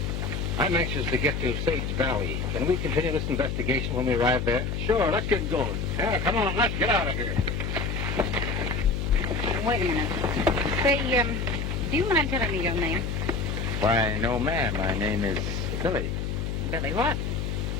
I'm anxious to get to Sage Valley. Can we continue this investigation when we arrive there? Sure, let's get going. Yeah, come on, let's get out of here. Wait a minute. Say, do you mind telling me your name? Why, no, ma'am. My name is Billy. Billy what?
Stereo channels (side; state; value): left; noise; hum, 2 dB below the sound